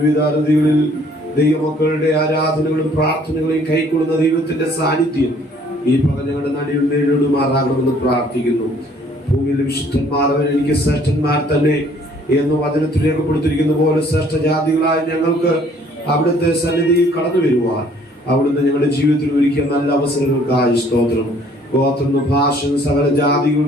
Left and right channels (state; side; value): normal; both; correlation 0.59